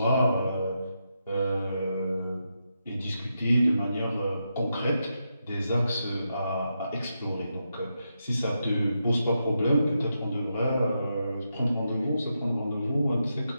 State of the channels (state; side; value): inverted; both; correlation -0.85